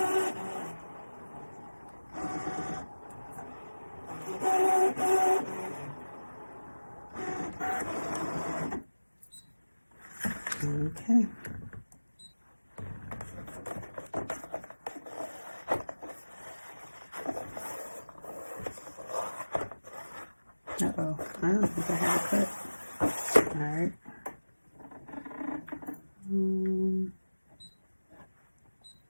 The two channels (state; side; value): inverted; both; correlation -1.00